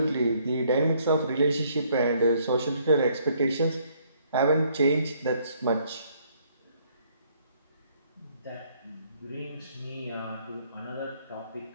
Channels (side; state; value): both; inverted; correlation -0.66